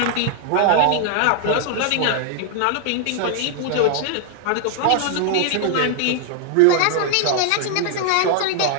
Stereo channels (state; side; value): different; both; correlation 0.00